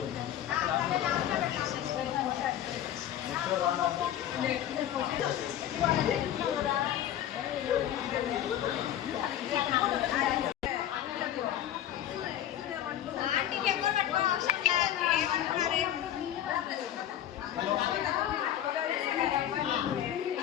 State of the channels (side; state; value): right; quieter; 11.5 dB